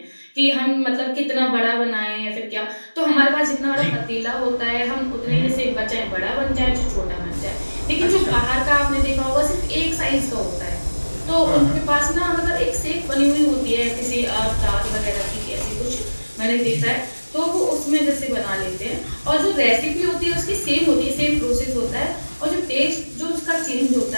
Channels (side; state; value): both; inverted; correlation -1.00